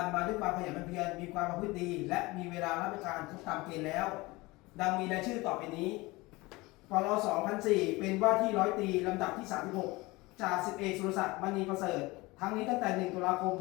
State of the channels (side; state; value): right; quieter; 22.2 dB